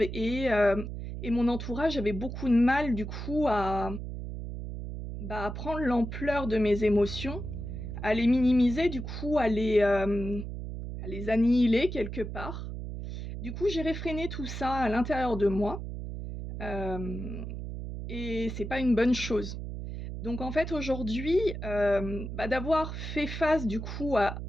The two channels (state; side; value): noise; right; hum, 7 dB below the sound